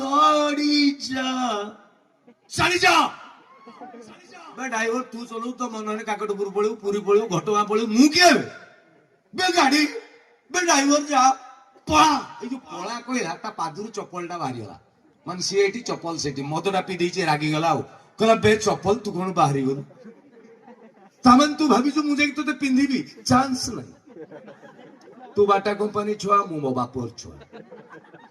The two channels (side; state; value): both; identical; correlation 1.00